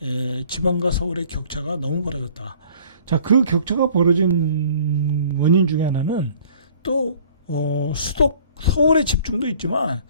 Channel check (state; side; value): inverted; both; correlation -0.53